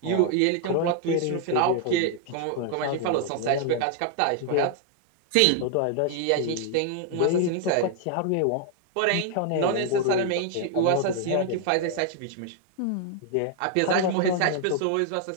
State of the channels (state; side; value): different; both; correlation 0.00